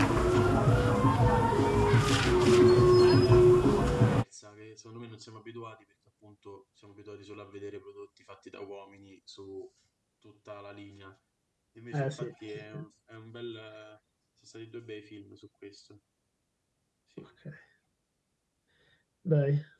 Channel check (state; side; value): identical; both; correlation 1.00